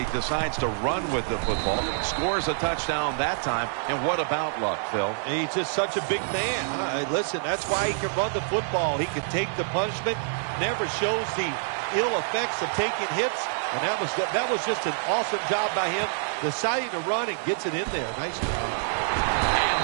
decides to run with the football. Scores a touchdown that time. And what about Luck, Phil? He's just such a big man. Listen, that's why he can run the football. He can take the punishment, never shows the ill effects of taking hits. And that was just an awesome job by him, deciding to run and gets it in there. Nice job. And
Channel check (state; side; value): silent; left; digital silence